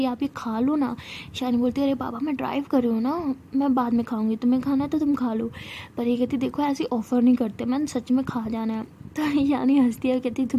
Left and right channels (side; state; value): both; identical; correlation 1.00